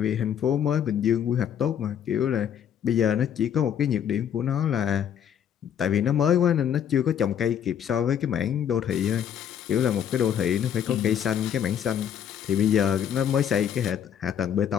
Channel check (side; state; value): right; quieter; 9.0 dB